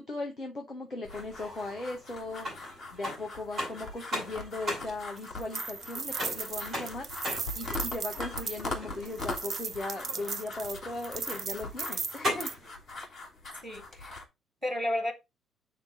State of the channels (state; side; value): normal; both; correlation 0.70